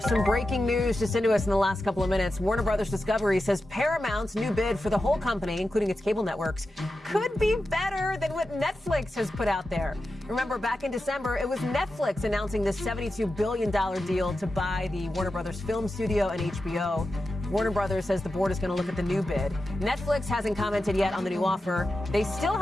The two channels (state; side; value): normal; both; correlation 0.91